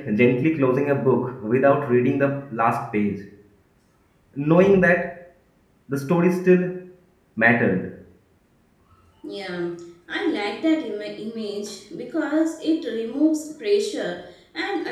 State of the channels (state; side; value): identical; both; correlation 1.00